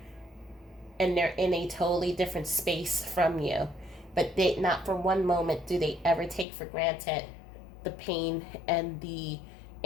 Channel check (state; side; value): drops out; right; at 6.5 s